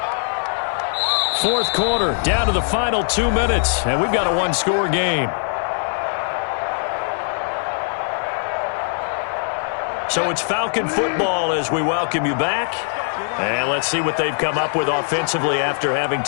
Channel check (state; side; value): silent; right; digital silence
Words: Fourth quarter, down to the final 2 minutes, and we've got a 1-score game. So it's Falcon football as we welcome you back. And let's see what they've come up with offensively after having